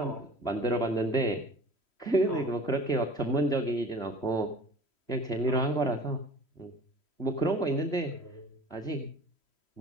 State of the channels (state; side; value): late; right; 3.1 ms